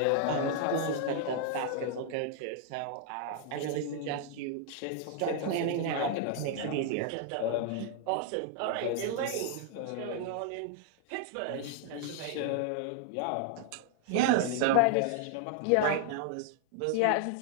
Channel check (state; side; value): different; both; correlation 0.00